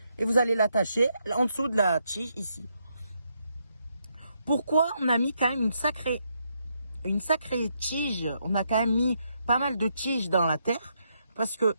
et vous allez l'attacher en dessous de la tige ici. Pourquoi on a mis quand même une sacrée tige, on a quand même mis pas mal de tiges dans la terre, parce que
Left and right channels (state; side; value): inverted; both; correlation -0.78